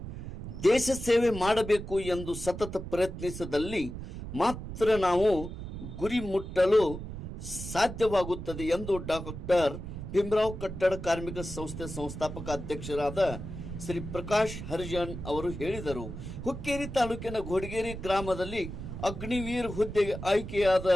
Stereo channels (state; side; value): noise; right; rumble, 9 dB below the sound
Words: ದೇಶ ಸೇವೆ ಮಾಡಬೇಕು ಎಂದು ಸತತ ಪ್ರಯತ್ನಿಸಿದಲ್ಲಿ ಮಾತ್ರ ನಾವು ಗುರಿ ಮುಟ್ಟಲು ಸಾಧ್ಯವಾಗುತ್ತದೆ ಎಂದು ಡಾಕ್ಟರ್ ಭೀಮರಾವ್ ಕಟ್ಟಡ ಕಾರ್ಮಿಕ ಸಂಸ್ಥೆ ಸಂಸ್ಥಾಪಕ ಅಧ್ಯಕ್ಷರಾದ ಶ್ರೀ ಪ್ರಕಾಶ್ ಹರಿಜನ್ ಅವರು ಹೇಳಿದರು. ಹುಕ್ಕೇರಿ ತಾಲೂಕಿನ ಘೋಡಗೇರಿ ಗ್ರಾಮದಲ್ಲಿ ಅಗ್ನಿವೀರ್ ಹುದ್ದೆಗೆ ಆಯ್ಕೆಯಾದ